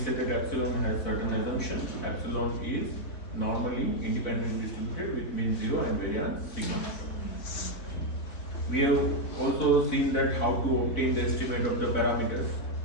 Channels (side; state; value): right; late; 4.0 ms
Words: that epsilon has certain assumptions. Epsilon is normally independently distributed with mean 0 and variance sigma. We have also seen that how to obtain the estimate of the parameters.